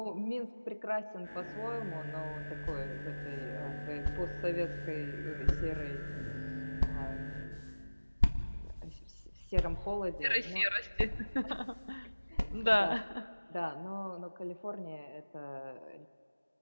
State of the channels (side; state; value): both; inverted; correlation -1.00